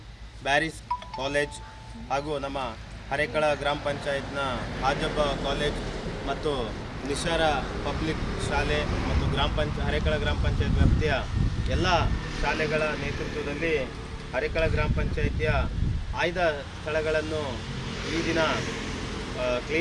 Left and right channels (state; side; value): identical; both; correlation 1.00